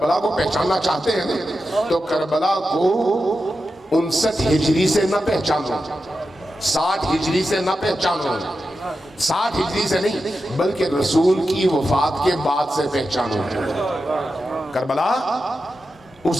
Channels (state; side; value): normal; both; correlation 0.90